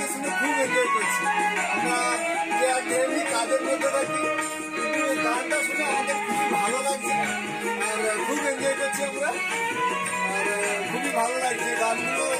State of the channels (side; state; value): both; identical; correlation 1.00